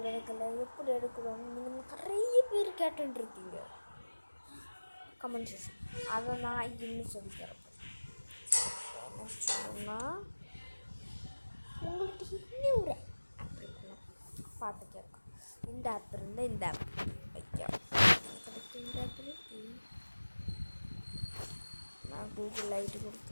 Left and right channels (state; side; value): inverted; both; correlation -1.00